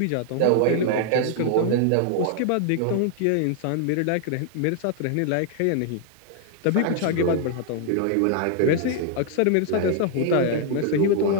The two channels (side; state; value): both; different; correlation 0.00